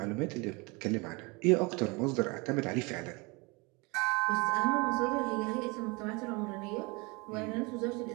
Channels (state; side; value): quieter; left; 27.7 dB